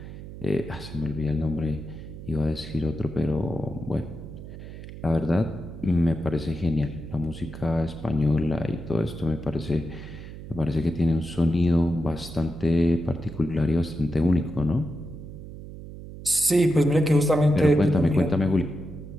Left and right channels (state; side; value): noise; right; hum, 13 dB below the sound